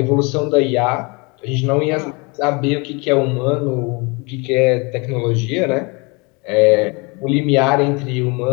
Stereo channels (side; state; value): right; quieter; 29.1 dB